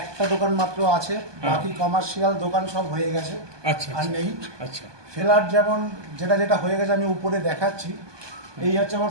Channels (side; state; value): left; late; 1.2 ms